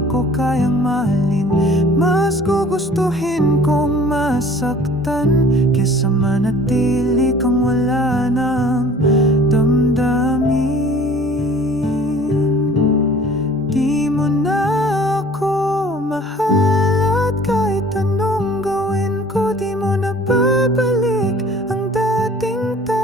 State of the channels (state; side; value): normal; both; correlation 0.50